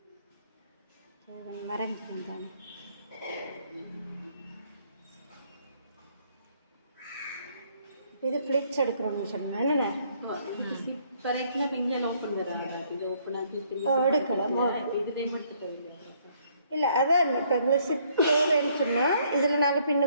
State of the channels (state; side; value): inverted; both; correlation -0.66